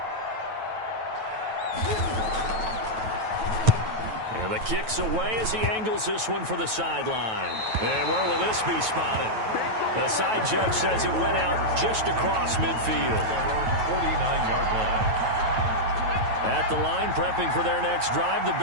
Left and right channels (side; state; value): left; late; 9.1 ms